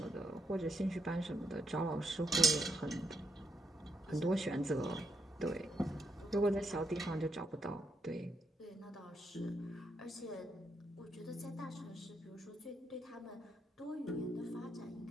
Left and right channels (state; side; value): normal; both; correlation 0.79